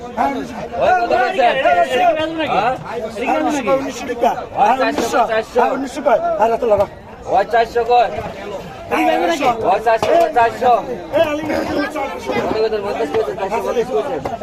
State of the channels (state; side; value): identical; both; correlation 1.00